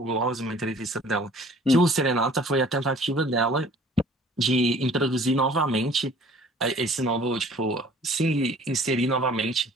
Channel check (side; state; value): both; normal; correlation 0.52